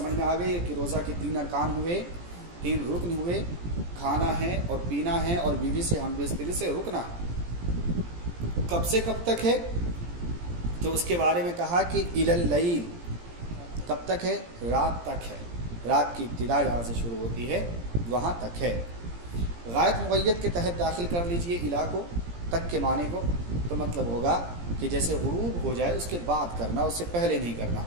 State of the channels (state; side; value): late; left; 17 ms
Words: میں آ گئی ہے کہ روزہ کے 3 ارکان ہوئے، 3 رکن ہوئے، کھانا ہے اور پینا ہے اور بیوی سے ہم بستری سے رکنا ہے۔ کب سے کب تک ہے؟ تو اس کے بارے میں کہا کہ الی اللیل، کب تک ہے؟ رات تک ہے، رات کی ابتدا جہاں سے شروع ہوتی ہے وہاں تک ہے۔ غائب مقید کے تحت داخل کر لیجئے الی کو، تک کے معنی کو، تو مطلب ہوگا کہ جیسے غروب ہو جائے اس کے بعد کرنا، اس سے پہلے نہیں کرنا،